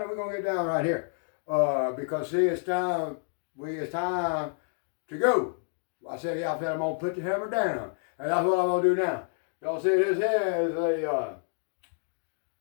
or we're going to get down right here? Because see, it's time to go. I said, yeah, I'm going to put the hammer down. And that's what I'm going to do now. Y'all see, this here is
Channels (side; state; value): right; silent; 59 dB below the other